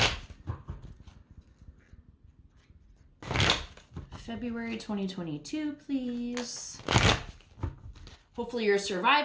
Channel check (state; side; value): identical; both; correlation 1.00